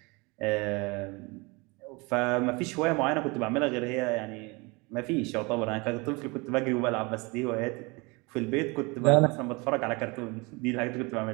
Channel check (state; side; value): quieter; left; 26.8 dB